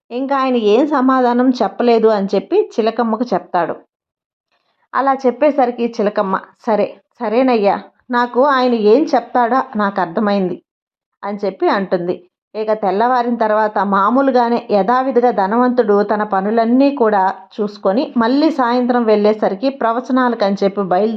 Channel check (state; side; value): identical; both; correlation 1.00